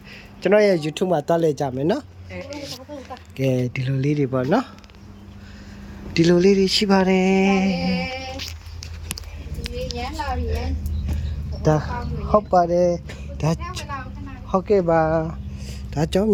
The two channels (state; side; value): identical; both; correlation 1.00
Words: ကျွန်တော်ရဲ့ YouTube မှာတွားလဲကြမယ်နော်ကဲဒီလိုလေးတွေပေါ့နော်ဒီလိုလေးတွေရှိပါတယ်ဒီရမ်းလာပြီဒါဟုတ်ပါတယ်ဒါဟုတ်ကဲ့ပါဒါကြောင့်